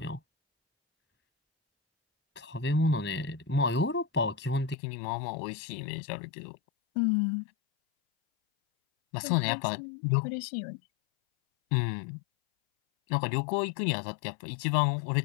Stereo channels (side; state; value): right; drops out; at 4.8 s